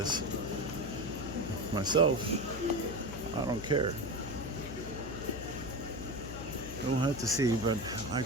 Myself, I don't care. We'll have to see, but I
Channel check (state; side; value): noise; left; hum, 10 dB below the sound